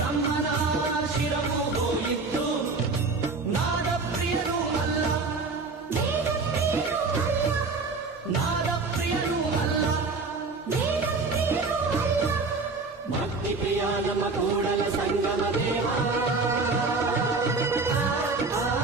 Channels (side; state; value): left; quieter; 4.0 dB